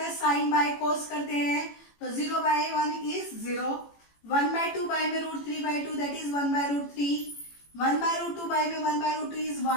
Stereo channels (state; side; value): late; right; 18 ms